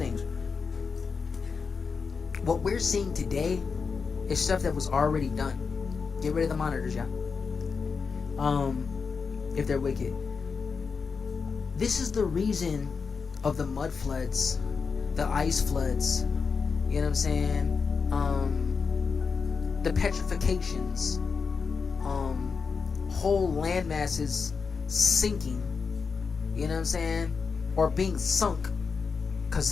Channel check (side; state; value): right; quieter; 5.3 dB